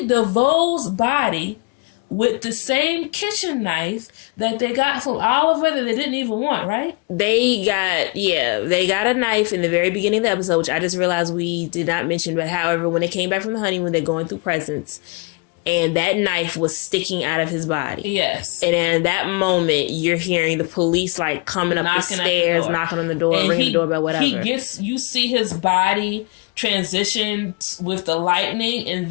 DeVoe's body with the same kitchen knife that they got from Oliver that they didn't even want. Right? They got a knife in the very beginning of the episode, which I just realized we did not mention. But however, when they came back from the honeymoon, they're going through presents. And that knife was sticking out of his body. Yes. And in that moment, you're hearing the police like coming up the stairs, knocking on the door, ringing the doorbell, whatever. You see his body transition with the lightning, and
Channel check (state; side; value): quieter; right; 28.2 dB